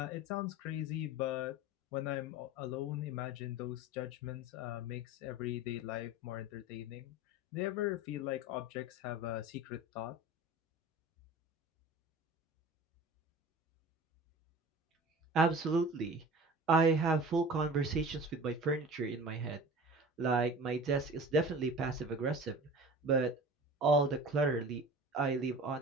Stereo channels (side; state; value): both; normal; correlation 0.38